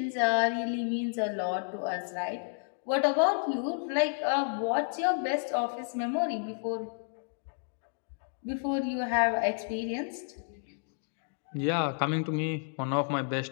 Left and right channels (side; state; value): right; silent; digital silence